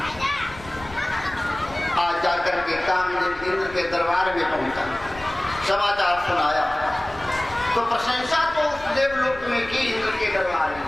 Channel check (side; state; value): left; noise; rumble, 18 dB below the sound